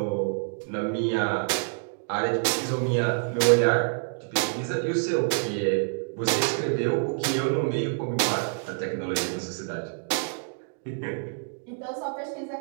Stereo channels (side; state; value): left; silent; 59 dB below the other